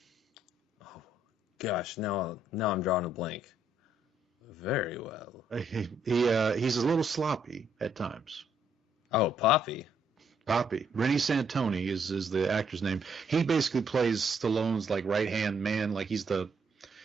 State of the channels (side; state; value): both; normal; correlation 0.70